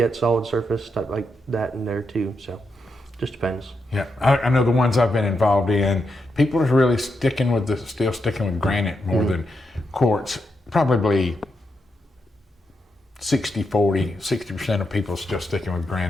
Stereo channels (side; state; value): both; normal; correlation 0.84